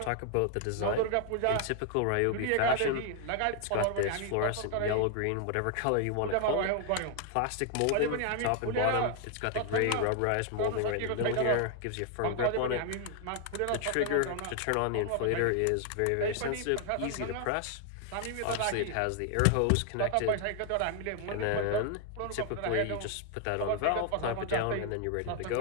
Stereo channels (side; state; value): both; different; correlation 0.00